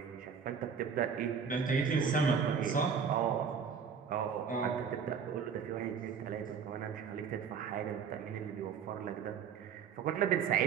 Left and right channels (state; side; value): quieter; left; 6.6 dB